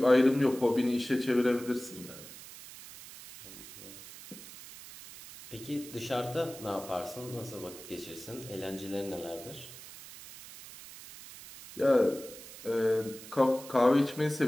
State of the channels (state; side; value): noise; right; hiss, 15 dB below the sound